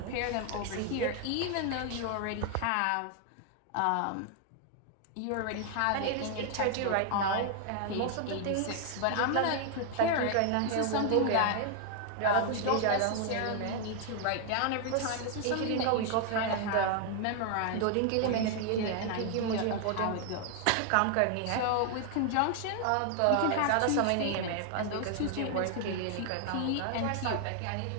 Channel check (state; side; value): different; both; correlation 0.00